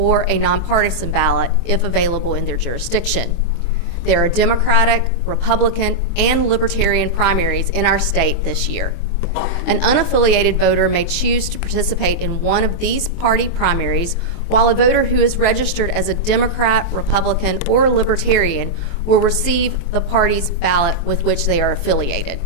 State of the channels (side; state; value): right; late; 23 ms